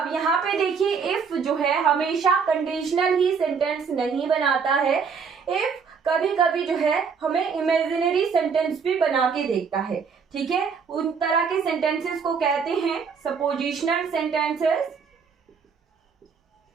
यहाँ पे देखिए, इफ जो है हमेशा कंडीशनल ही सेंटेंस नहीं बनाता है। इफ कभी कभी जो है हमें इमेजिनरी सेंटेंस भी बना के देखता है। ठीक है, उन तरह के सेंटेंसेस को कहते हैं सपोजिशनल सेंटेंसेस,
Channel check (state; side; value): quieter; left; 5.9 dB